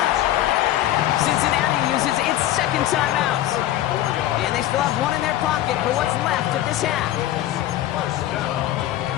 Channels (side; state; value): right; quieter; 13.6 dB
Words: Cincinnati uses its 2nd timeout. And they still have one in their pocket for what's left of this half.